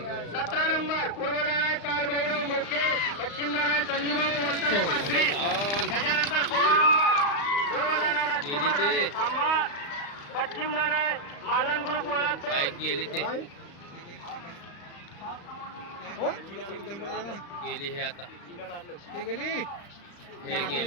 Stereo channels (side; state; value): right; late; 35 ms